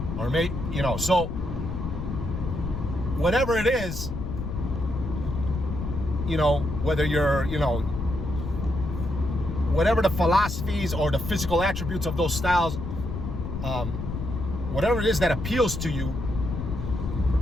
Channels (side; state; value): left; noise; rumble, 5 dB below the sound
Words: Or so whatever it is, whether you're, whatever the philosophies or the physical attributes of those styles, whatever it is that appeals to you,